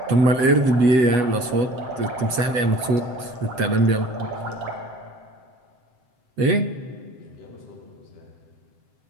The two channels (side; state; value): left; late; 8.2 ms